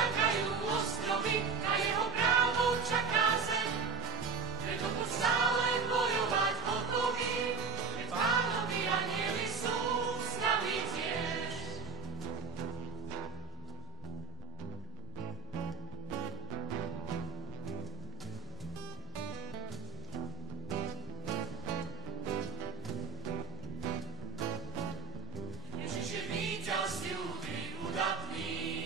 ostrovy, na jeho právo čaká zem, preto buď stále bojovať hotový, veď Pánovi anjeli sú s nami tiež. Ježiš je víťaz ľudí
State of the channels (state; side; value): quieter; left; 6.0 dB